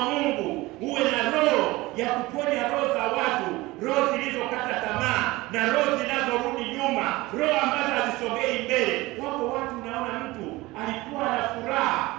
Mungu, uwe na roho ya kuponya roho za watu, roho zilizokata tamaa na roho zinazorudi nyuma, roho ambazo hazisogei mbele. Wako watu unaona mtu alikuwa na furaha,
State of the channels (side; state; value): left; quieter; 20.3 dB